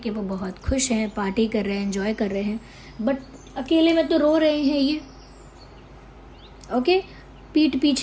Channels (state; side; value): identical; both; correlation 1.00